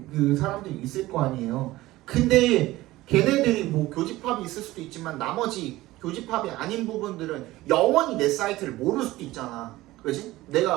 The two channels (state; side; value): quieter; left; 17.6 dB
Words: 그 사람들이 있을 거 아니에요. 근데 걔네들이 뭐 교집합이 있을 수도 있지만 나머지 교집합이 아닌 부분들은 영원히 내 사이트를 모를 수도 있잖아. 그지?